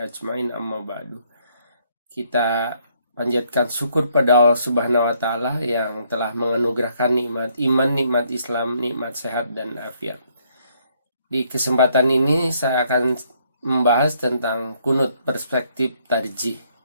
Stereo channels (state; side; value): inverted; both; correlation -0.70